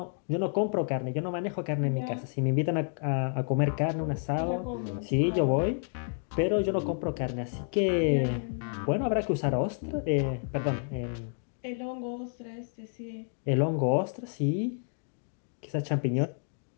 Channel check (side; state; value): right; silent; 58 dB below the other